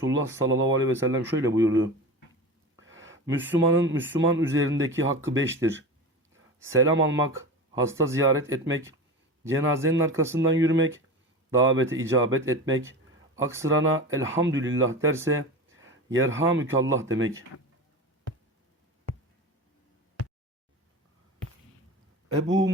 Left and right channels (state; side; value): normal; both; correlation 0.28